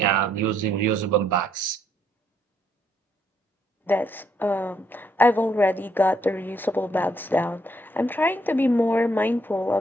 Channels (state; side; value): normal; both; correlation 0.72